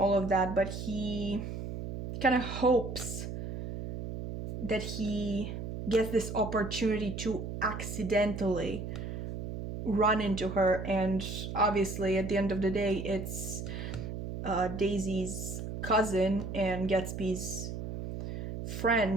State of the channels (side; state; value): right; noise; hum, 6 dB below the sound